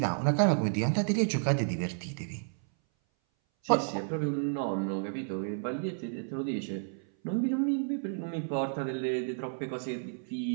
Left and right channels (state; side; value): silent; left; 57 dB below the other